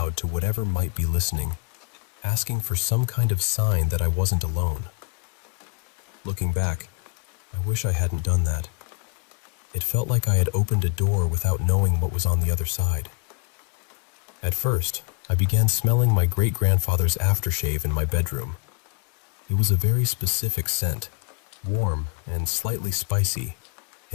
to whatever might be listening, asking for some kind of sign that I wasn't alone. Looking back, I wish I hadn't done that. It felt like I had opened a door without knowing what was on the other side. At first, I began smelling my great-grandfather's aftershave in my bedroom. It was a very specific scent, warm and slightly spicy,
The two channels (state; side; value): quieter; right; 35.4 dB